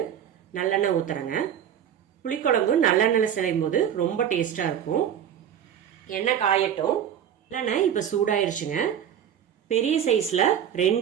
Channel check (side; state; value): left; quieter; 9.4 dB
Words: நல்லெண்ணெய் ஊத்துறேங்க. புளிக்குழம்பு நல்லெண்ணெயில செய்யும் போது ரொம்ப டேஸ்டா இருக்கும். எண்ணெய் காயட்டும். நல்லெண்ணெய் இப்போ சூடாயிருச்சுங்க. பெரிய சைஸ்ல